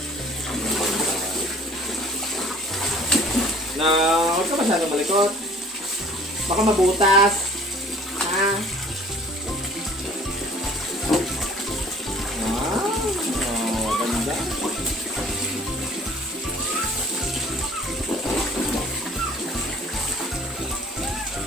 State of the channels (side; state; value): both; normal; correlation 0.52